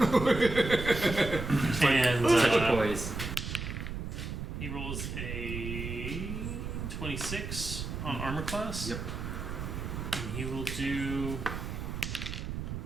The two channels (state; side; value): noise; right; rumble, 5 dB below the sound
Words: And Such a poise. he rolls a 26 on armor class. Yep. And he will do